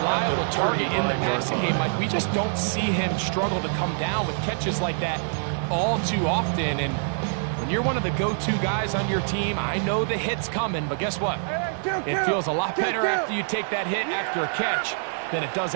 target in the passing game. Like, we just don't see him struggle to come down with catches like that all too often. And when you're one of the go-to guys on your team, I know the hit's coming, but guess what? It feels a lot better after you take that hit after a catch than it does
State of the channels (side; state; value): left; silent; 59 dB below the other